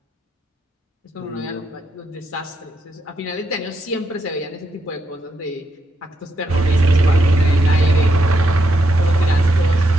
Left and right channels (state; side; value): normal; both; correlation 0.81